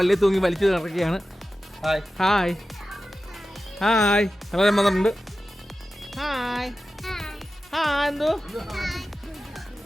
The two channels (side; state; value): both; normal; correlation 0.94